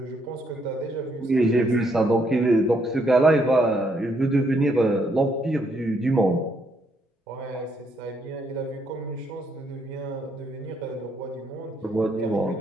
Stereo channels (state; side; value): normal; both; correlation 0.73